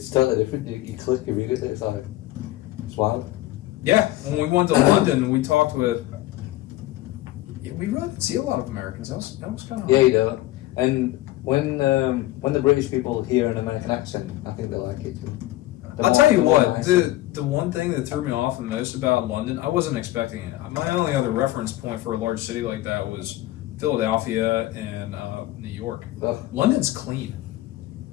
totally different. You click immediately. It's wild. Yeah, when we went to London, we talked with. Yeah, we really didn't see a lot of Americans. That was kind of. Yeah, you don't. And when the British people hear an American accent, I think they like it too. I'll tell you what, the one thing that threw me off the most about London, I wasn't expecting it. My only other reference point for a large city like that was Philadelphia and New York. Ugh. London's clean.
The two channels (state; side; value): quieter; right; 16.4 dB